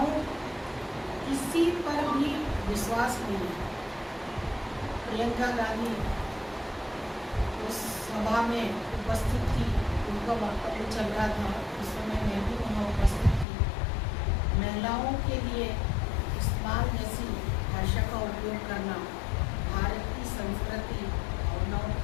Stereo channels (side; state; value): right; drops out; at 13.5 s